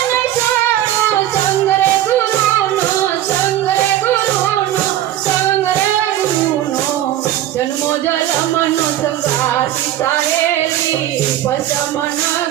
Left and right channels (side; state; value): left; quieter; 12.7 dB